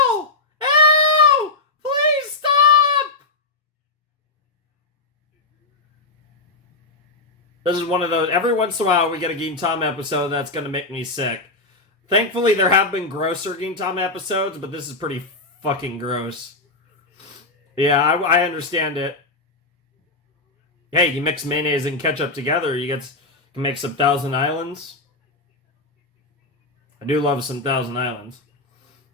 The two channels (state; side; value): quieter; right; 3.2 dB